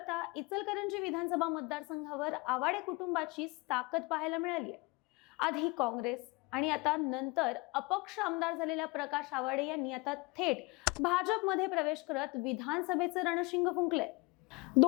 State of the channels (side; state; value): right; quieter; 25.9 dB